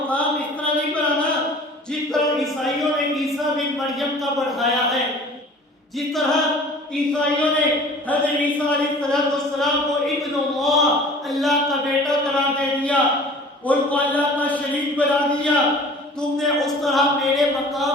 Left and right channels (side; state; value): both; normal; correlation 0.46